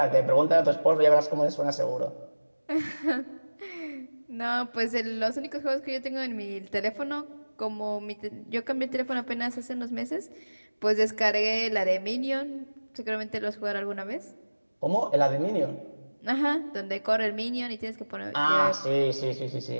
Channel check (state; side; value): inverted; both; correlation -1.00